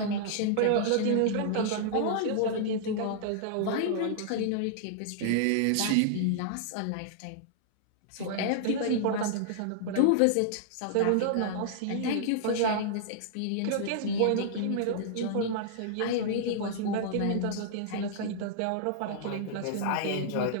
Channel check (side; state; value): both; different; correlation -0.01